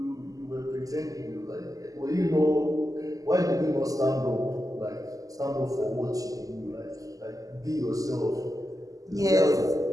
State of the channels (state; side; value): late; left; 0.17 ms